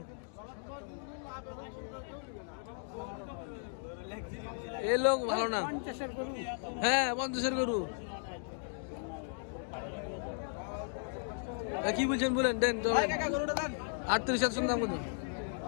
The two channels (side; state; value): right; silent; digital silence